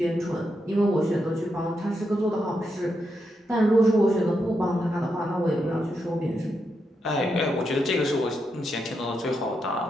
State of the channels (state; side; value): normal; both; correlation 0.83